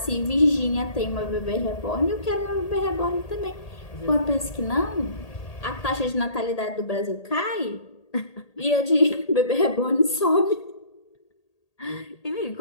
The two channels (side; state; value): right; late; 1.8 ms